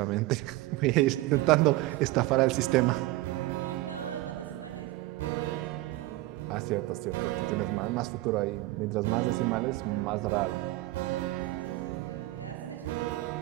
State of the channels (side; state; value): left; quieter; 18.4 dB